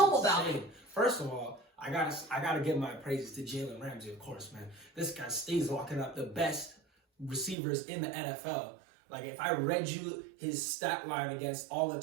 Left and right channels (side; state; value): left; drops out; at 7.6 s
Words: me about it. First of all, I gotta give my praises to Jalen Ramsey, of course, man. This guy stays locking up the best receivers in the NFL. Like, if I read you his stat line against all the